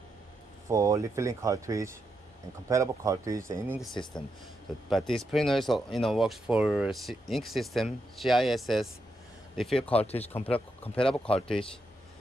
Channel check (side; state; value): both; normal; correlation 0.83